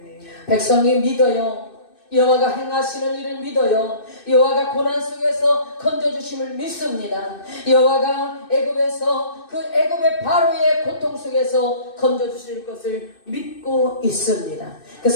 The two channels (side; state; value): right; late; 2.6 ms